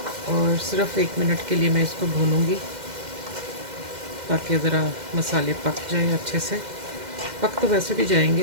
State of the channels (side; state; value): left; late; 2.1 ms